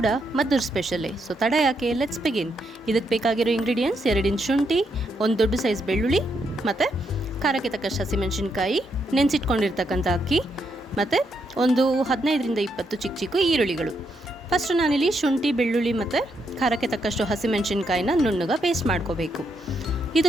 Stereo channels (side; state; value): both; normal; correlation 0.78